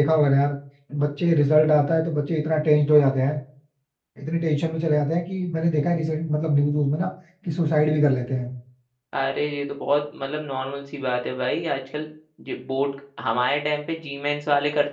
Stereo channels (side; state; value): both; identical; correlation 1.00